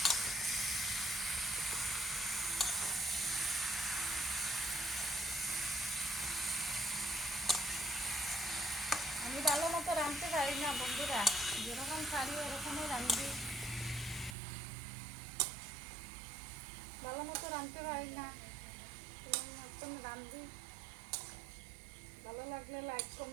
আমি ভালো মতো রাঁধতে পারি না বন্ধুরা, যেরকম পারি ওরকমই রাঁধি, ভালো মতো রাঁধতে পারি না, মতন রাঁধি। ভালো লাগলে লাইক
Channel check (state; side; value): drops out; left; at 14.4 s